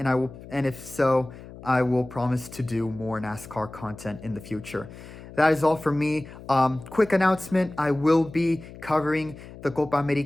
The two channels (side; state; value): left; noise; hum, 16 dB below the sound